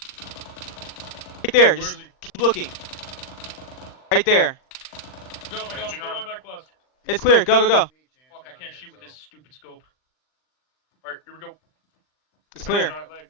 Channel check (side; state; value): right; late; 39 ms